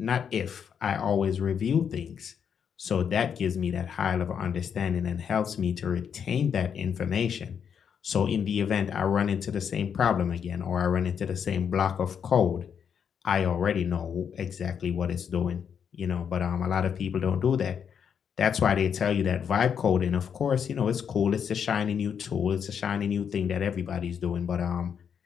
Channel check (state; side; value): quieter; right; 7.5 dB